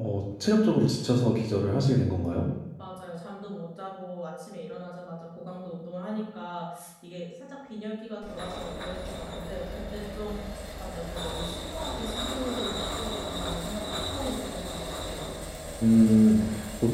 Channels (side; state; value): both; identical; correlation 1.00